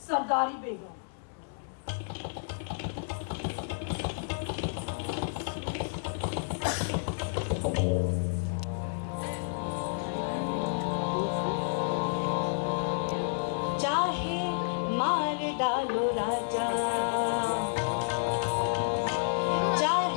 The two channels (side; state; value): right; silent; digital silence